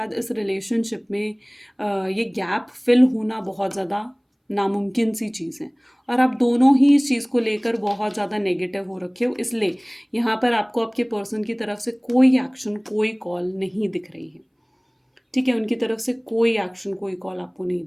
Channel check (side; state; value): both; identical; correlation 1.00